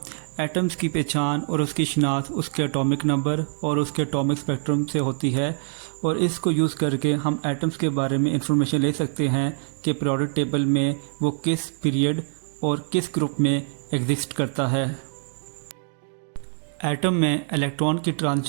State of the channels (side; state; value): left; silent; 62 dB below the other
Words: एटम्स की पहचान और उसकी शनाख्त उसके एटॉमिक नंबर और उसके एटॉमिक स्पेक्ट्रम से होती है और इसको यूज़ करके हम एटम्स के बारे में इंफॉर्मेशन ले सकते हैं कि पीरियोडिक टेबल में वो किस पीरियड और किस ग्रुप में एग्जिस्ट करता है। एटम में इलेक्ट्रॉन की